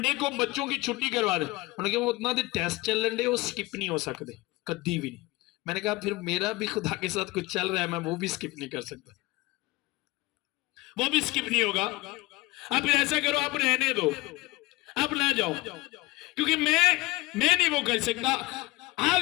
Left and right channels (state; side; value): quieter; right; 21.9 dB